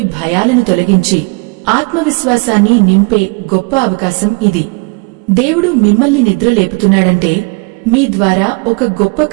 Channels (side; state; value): left; quieter; 30.9 dB